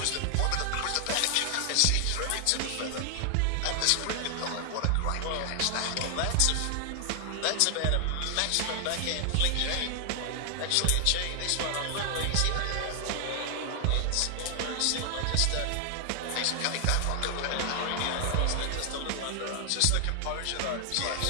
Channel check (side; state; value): both; different; correlation 0.00